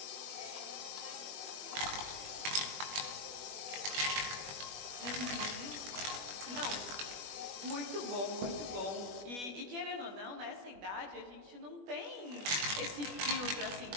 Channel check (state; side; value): late; left; 21 ms